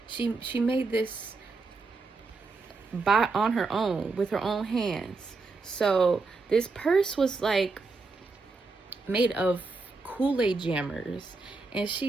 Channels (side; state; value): left; quieter; 3.9 dB